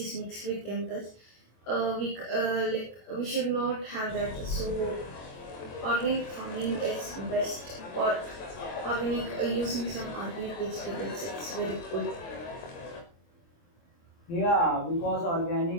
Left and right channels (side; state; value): right; late; 23 ms